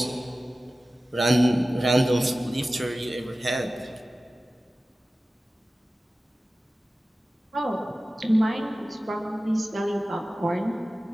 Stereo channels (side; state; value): both; normal; correlation 0.96